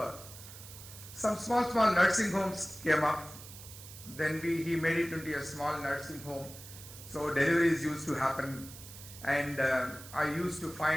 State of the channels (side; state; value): right; noise; hiss, 15 dB below the sound